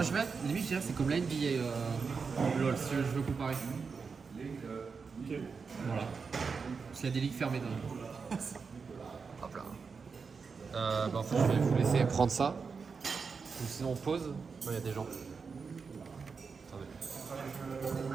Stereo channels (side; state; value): left; quieter; 5.2 dB